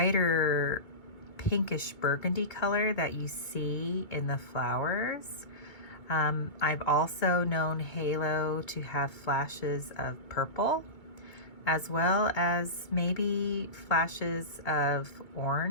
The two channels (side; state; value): right; late; 2.2 ms